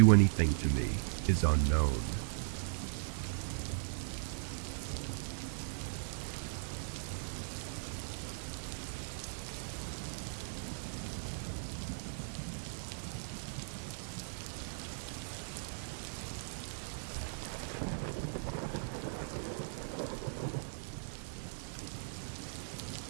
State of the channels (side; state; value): left; silent; digital silence